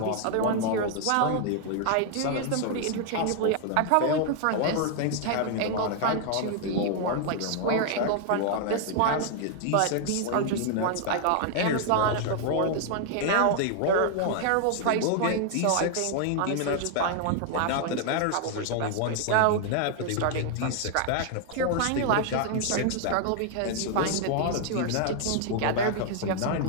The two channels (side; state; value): both; different; correlation 0.00